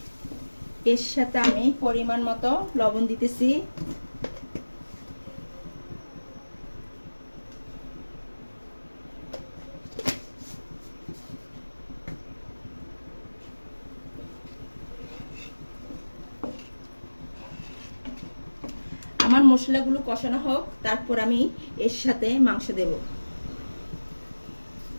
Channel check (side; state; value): both; inverted; correlation -1.00